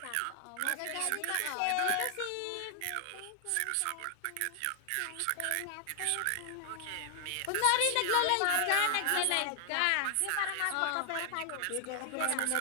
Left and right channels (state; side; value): different; both; correlation 0.00